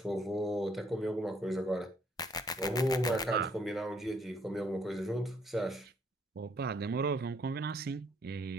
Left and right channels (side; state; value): both; normal; correlation 0.66